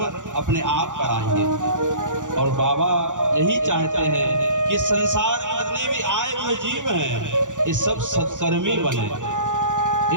अपने आप कराएंगे। और बाबा यही चाहते हैं कि संसार में जितने भी आए हुए जीव हैं, ये सब सत्कर्मी बने,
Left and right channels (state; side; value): late; left; 0.86 ms